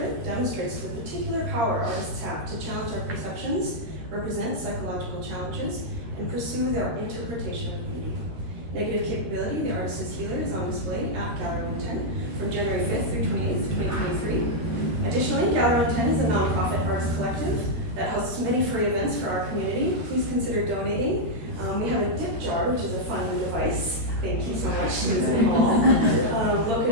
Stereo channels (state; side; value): late; left; 13 ms